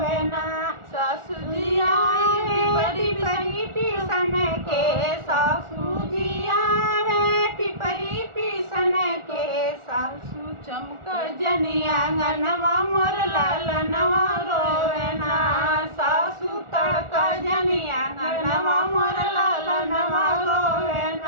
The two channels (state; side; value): late; left; 1.4 ms